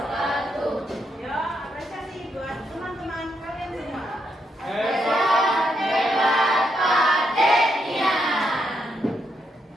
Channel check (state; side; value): normal; both; correlation 0.79